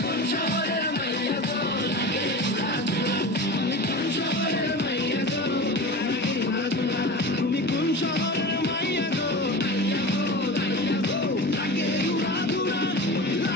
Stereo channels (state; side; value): normal; both; correlation 0.31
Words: কোন শহরের মাইয়া গো লাগে উড়া ধুরা তুমি কোন শহরের মাইয়া গো লাগে উড়া ধুরা তুমি কোন শহরের মাইয়া গো লাগে উড়া ধুরা